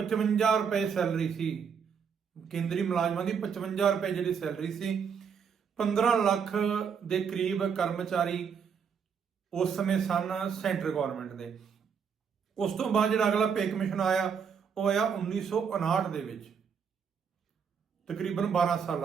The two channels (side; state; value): left; quieter; 6.8 dB